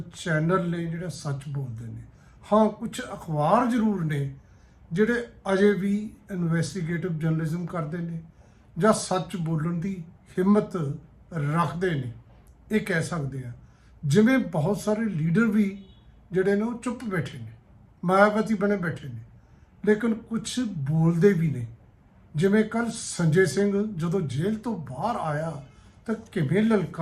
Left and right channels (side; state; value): both; identical; correlation 1.00